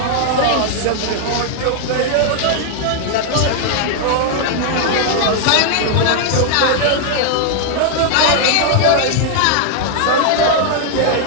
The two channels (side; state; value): both; different; correlation 0.00